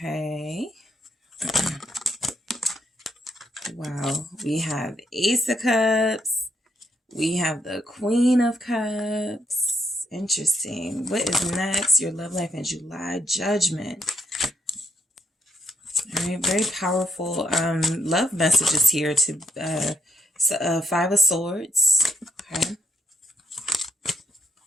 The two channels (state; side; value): normal; both; correlation 0.75